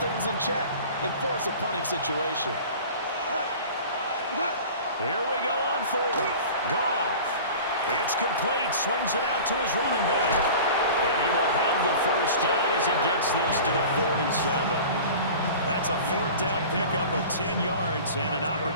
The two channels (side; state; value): both; inverted; correlation -0.39